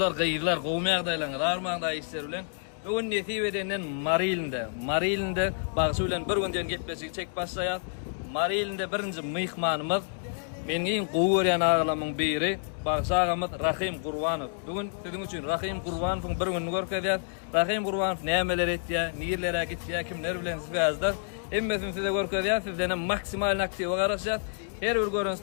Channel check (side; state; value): right; silent; digital silence